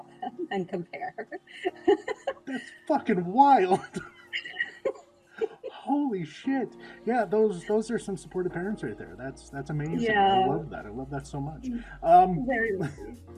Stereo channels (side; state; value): both; identical; correlation 1.00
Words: them and compare. That's fucking wild. Holy shit. Yeah, those are some supportive parents right there. That's amazing. Yeah. I love that. I love that so much. Very lucky.